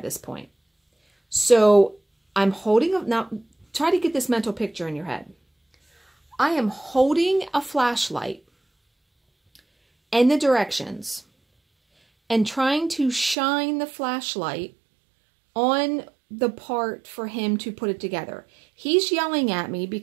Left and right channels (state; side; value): drops out; left; at 13.4 s